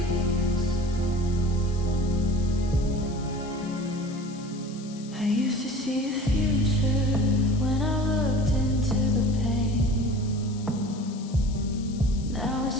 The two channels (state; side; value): noise; left; hiss, 20 dB below the sound